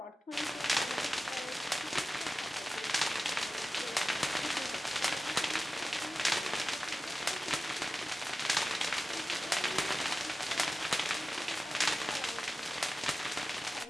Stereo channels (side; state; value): both; normal; correlation 0.96